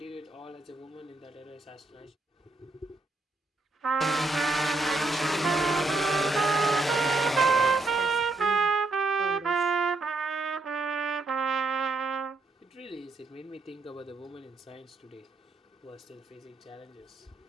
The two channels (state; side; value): quieter; left; 3.2 dB